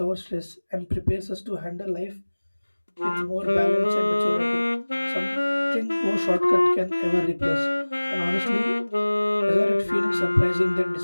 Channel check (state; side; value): inverted; both; correlation -1.00